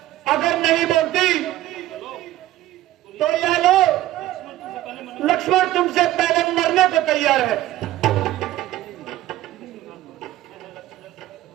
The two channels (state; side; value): quieter; left; 14.8 dB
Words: अगर नहीं बोलती तो यह लो, लक्ष्मण तुमसे पहले मरने को तैयार है।